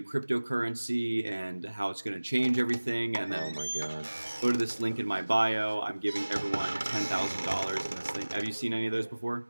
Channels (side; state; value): both; inverted; correlation -1.00